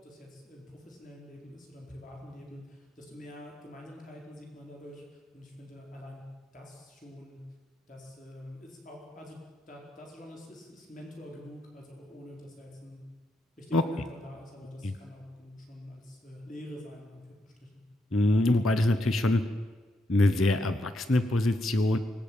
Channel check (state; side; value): normal; both; correlation 0.81